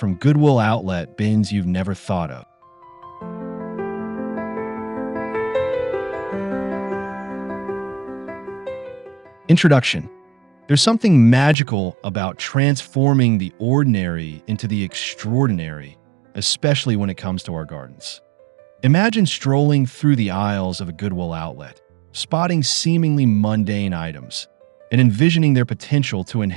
Goodwill outlet bins you've never thought of. Introduction. There's something magical about transforming the ordinary into the extraordinary, especially when it comes to our gardens. Imagine strolling through the aisles of a Goodwill outlet, spotting seemingly mundane items, and envisioning their potential to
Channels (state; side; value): drops out; left; at 11.6 s